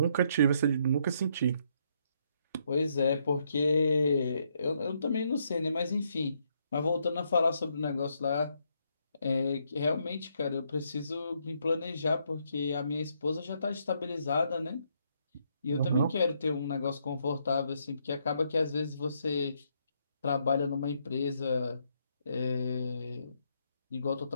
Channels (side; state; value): both; inverted; correlation -0.75